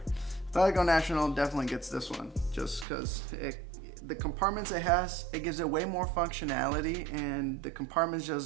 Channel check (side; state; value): left; drops out; at 2.9 s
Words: Athletico National definitely gets this one just because the compartments it has, it gives it way more functionality, and the compartments